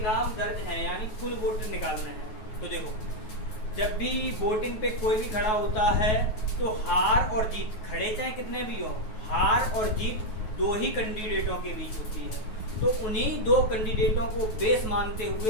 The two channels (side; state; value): right; late; 9.3 ms